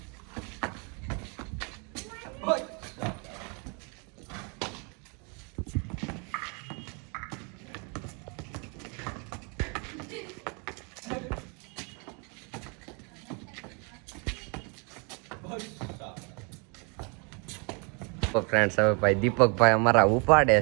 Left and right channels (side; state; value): left; quieter; 34.0 dB